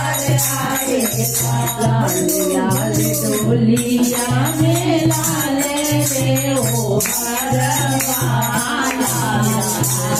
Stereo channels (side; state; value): right; noise; hum, 22 dB below the sound